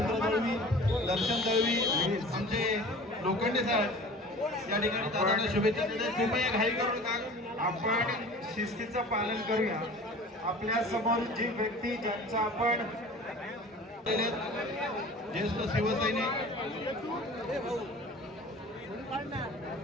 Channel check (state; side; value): normal; both; correlation 0.42